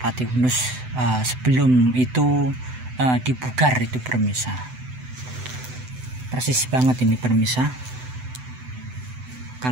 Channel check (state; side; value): late; left; 7.9 ms